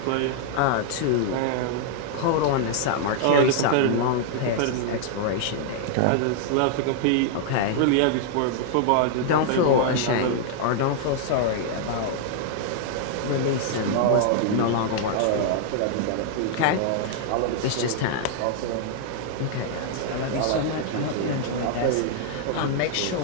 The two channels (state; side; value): different; both; correlation -0.01